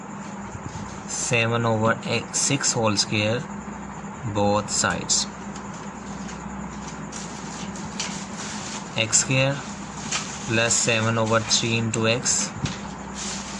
7 over 6 whole square both sides. X square plus 7 over 3 into x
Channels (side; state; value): both; identical; correlation 1.00